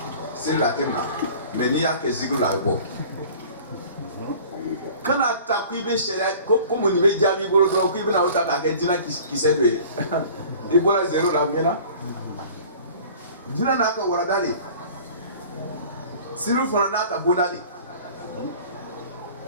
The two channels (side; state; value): both; inverted; correlation -0.46